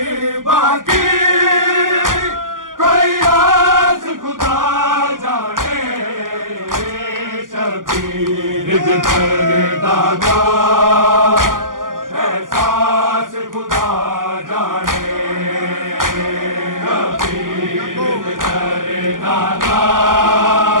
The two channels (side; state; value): left; late; 0.90 ms